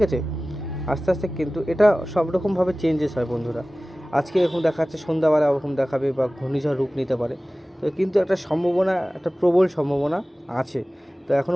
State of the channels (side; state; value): both; normal; correlation 0.97